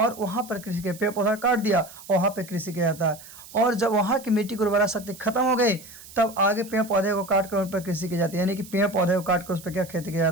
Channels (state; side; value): noise; right; hiss, 18 dB below the sound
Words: वहाँ पर कृषि के, पेड़ पौधा काट दिया और वहाँ पर कृषि किया जाता है। और जब वहाँ की मिट्टी की उर्वरा शक्ति खत्म हो गई, तब आगे पेड़ पौधे को काट कर उन पर कृषि की जाती है। यानी कि पेड़ पौधे को काट कर उस पर क्या खेती किया